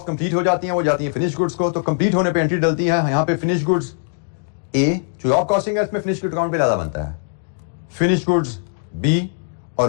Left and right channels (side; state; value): right; silent; digital silence